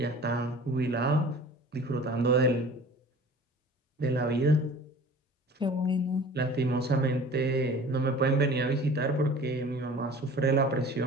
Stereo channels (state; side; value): normal; both; correlation 0.44